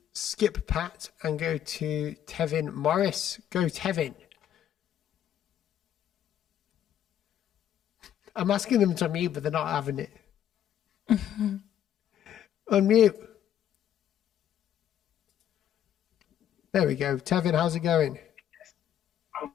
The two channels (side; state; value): right; quieter; 10.4 dB